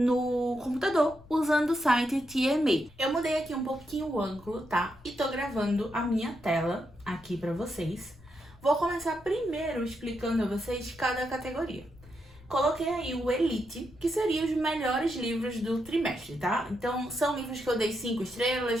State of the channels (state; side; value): noise; left; rumble, 23 dB below the sound